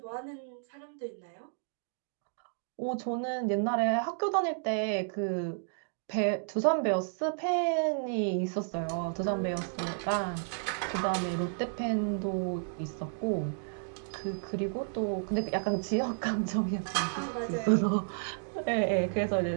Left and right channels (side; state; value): left; silent; digital silence